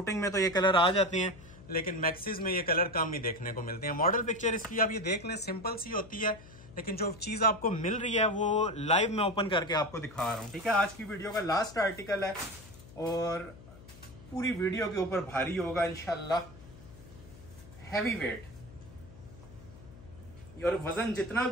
में तो ये कलर आ जाते हैं, लेकिन मैक्सीज में ये कलर कम ही देखने को मिलते हैं। मॉडल पिक्चर इसकी आप ये देख लें, सिंपल सी होती है, लेकिन जो चीज आपको मिल रही है वो लाइव में ओपन करके आपको दिखा रहा हूँ। ठीक है, आज की वीडियो का लास्ट आर्टिकल है और पूरी वीडियो के ऊपर भारी होगा इंशाल्लाह, हैवी वेट। और वजन जितना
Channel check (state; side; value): noise; left; hum, 19 dB below the sound